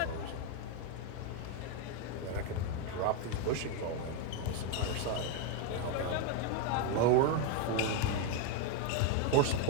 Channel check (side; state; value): both; different; correlation 0.01